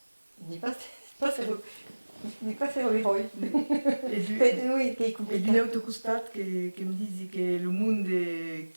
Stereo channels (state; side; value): inverted; both; correlation -1.00